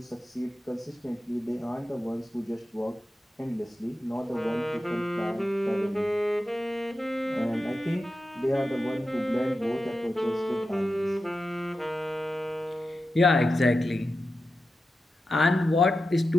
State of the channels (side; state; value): both; normal; correlation 0.91